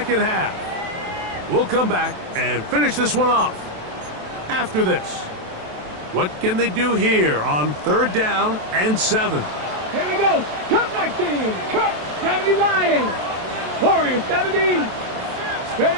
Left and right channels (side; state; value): left; late; 27 ms